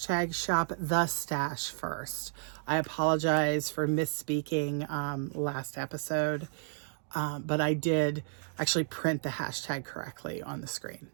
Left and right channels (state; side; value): silent; left; digital silence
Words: shop the stash first. I apologize for misspeaking last episode. but I did actually print the hashtag correctly on the screen.